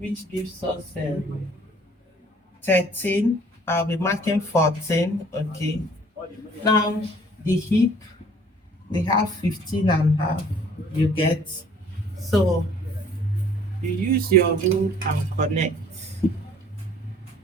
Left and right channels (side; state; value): both; normal; correlation 0.56